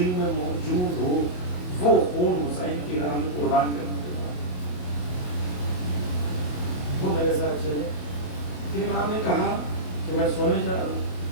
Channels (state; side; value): late; right; 27 ms